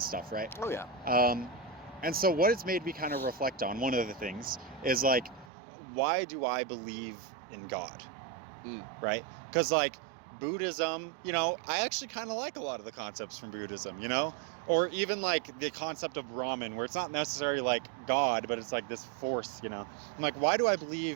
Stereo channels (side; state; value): left; drops out; at 5.5 s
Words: stuff, right? Oh, yeah. And so what it's made me kind of reflect on, one of the things, is like, why do I believe in God? Right? Because like, Buddhism, you know, I actually kind of like a lot of the concepts from Buddhism, you know? Or even like the concept of Brahman, where it's not necessarily like God, but it's like this force, you know? I'm like, why do I